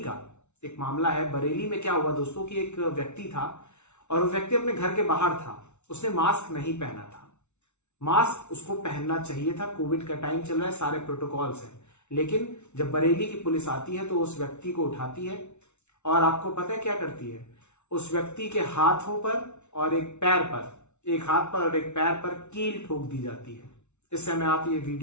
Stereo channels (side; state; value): right; late; 0.82 ms